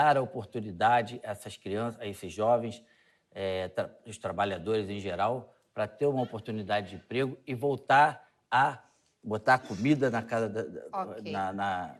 a oportunidade a essas crianças, a esses jovens, os trabalhadores em geral, para ter uma oportunidade de emprego e voltar a botar comida na casa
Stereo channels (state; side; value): identical; both; correlation 1.00